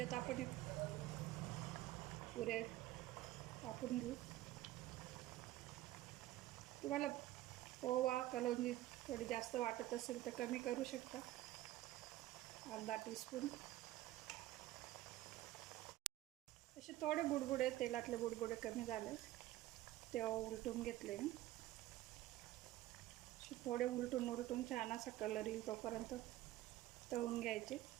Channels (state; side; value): quieter; left; 15.4 dB